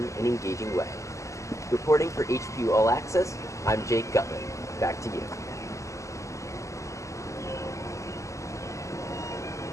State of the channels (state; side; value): late; right; 0.15 ms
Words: and engaging way. Reporting for HPU All Access, I'm Jake Gutman. Back to you.